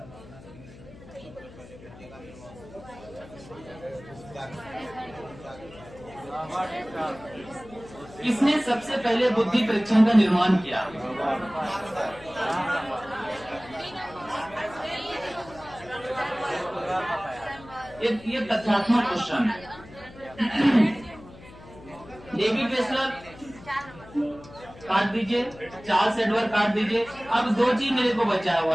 किसने सबसे पहले बुद्धि परीक्षण का निर्माण किया? ये तथ्यात्मक क्वेश्चन है। डेविड वेसलर काट दीजिए, चार्ल्स एडवर्ड काट दीजिए। अब दो चीज मेरे को बचा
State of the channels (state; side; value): noise; left; hum, 19 dB below the sound